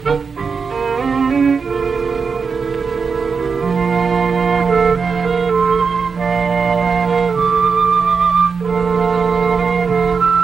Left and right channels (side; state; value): left; quieter; 5.4 dB